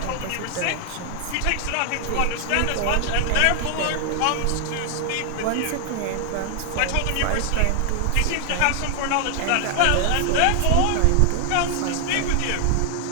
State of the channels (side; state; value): both; different; correlation 0.00